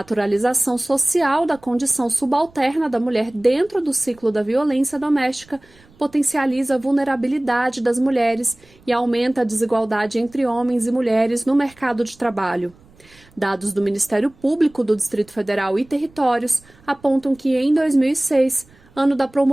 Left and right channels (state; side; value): noise; right; rumble, 28 dB below the sound